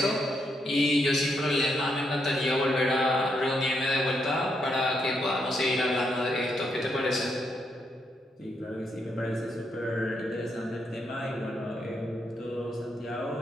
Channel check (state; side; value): normal; both; correlation 0.78